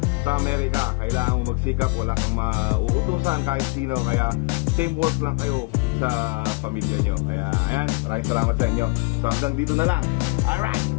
sa Amerika. Kailangan mo magsikap, wala kang mauutusan kahit sino. Kaya teamwork lang kayo sa pamilya nyo. Kaya ayan, maraming salamat sa inyo. So hanggang dito na lang. Alright,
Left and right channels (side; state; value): right; quieter; 27.7 dB